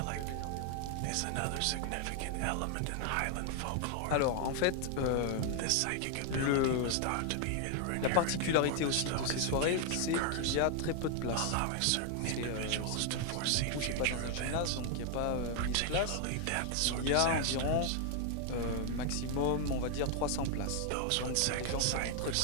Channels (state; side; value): different; both; correlation 0.00